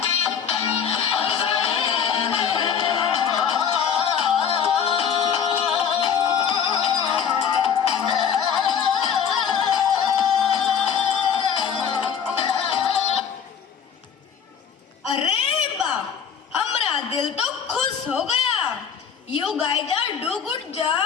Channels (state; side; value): quieter; right; 7.5 dB